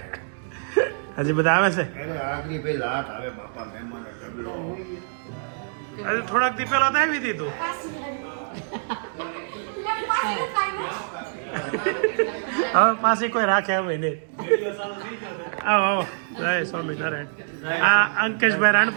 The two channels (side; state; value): left; silent; digital silence